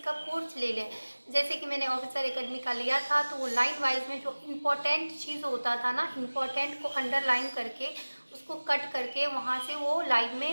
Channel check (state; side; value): inverted; both; correlation -1.00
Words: कोर्स ले लें। जैसे कि मैंने ऑफिसर एकेडमी का लिया था, तो वो लाइन वाइज में जो इम्पोर्टेंट चीज़ होता था ना, इम्पोर्टेंट को अंडरलाइन करके उसको कट करके वहाँ से वो लाइव